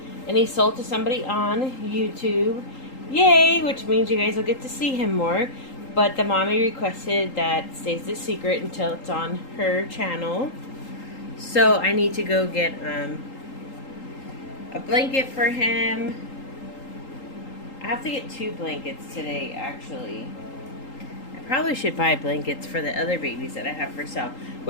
And he sold to somebody on YouTube. Yay! Which means you guys will get to see him more. But the mommy requested that stays a secret until it's on her channel. So I need to go get a blanket for him. I have to get 2 blankets today, actually. I probably should buy blankets for the other babies that I have for sale.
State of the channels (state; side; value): late; right; 3.8 ms